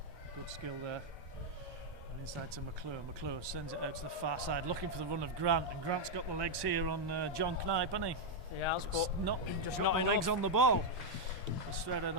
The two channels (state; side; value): normal; both; correlation -0.01